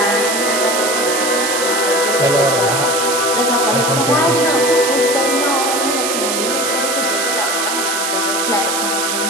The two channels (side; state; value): right; noise; hiss, 1 dB below the sound